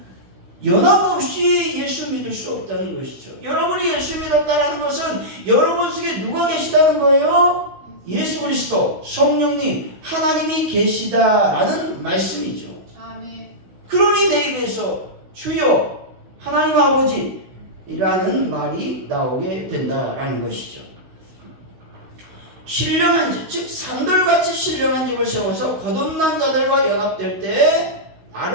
연합 없이 예수 믿을 수 없다는 것이죠. 여러분이 예수 믿었다는 것은 여러분 속에 누가 계시다는 거예요? 예수 그리스도, 성령님, 하나님이 계시다라는 말씀이죠. 아멘. 그러니 내 입에서 주여 하나님 아버지라는 말이 나오게 된다라는 것이죠. 신령한 집, 즉 산돌같이 신령한 집을 세워서 거듭난 자들과 연합될 때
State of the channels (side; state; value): left; late; 16 ms